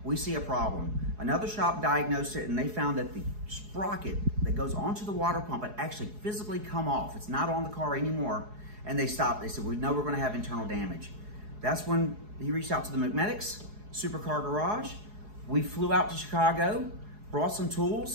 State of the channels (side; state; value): left; late; 4.8 ms